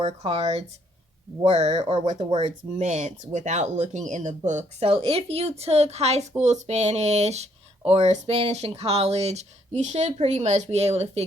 cards were or what the words meant without looking in the book. So if you took high school Spanish or Spanish in college, you should pretty much be able to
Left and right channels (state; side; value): normal; both; correlation 0.69